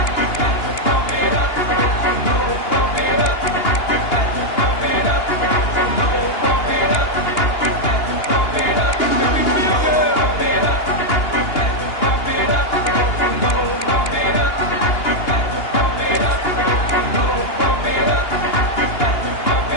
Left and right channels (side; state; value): right; late; 2.8 ms